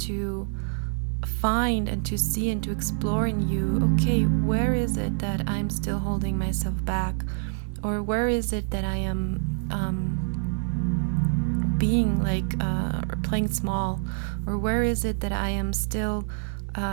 find and to see and to explore in you, okay, where is it that I'm still holding myself back? Or where is it that I am being or playing small? Or where is it that I am still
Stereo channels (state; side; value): silent; left; digital silence